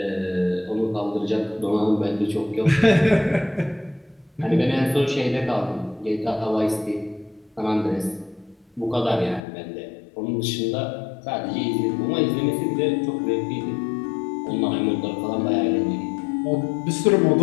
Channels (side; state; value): right; drops out; at 9.4 s